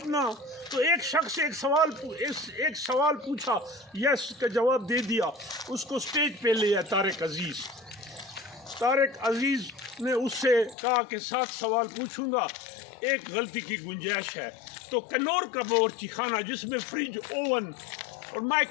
تو ایک شخص ایک سوال پوچھا، یس کا جواب دے دیا، اس کو سٹیج پہ لیا طارق عزیز نے اس سے کہا کہ 7 سوال پوچھوں گا، ایک غلطی کی گنجائش ہے. تو کنور کا باورچی خانہ جس میں فریج، اوون اور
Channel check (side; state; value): right; drops out; at 10.8 s